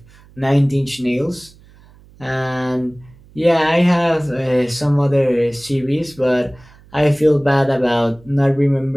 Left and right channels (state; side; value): noise; right; hum, 26 dB below the sound